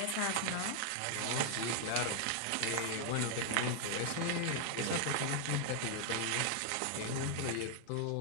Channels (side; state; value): both; different; correlation 0.00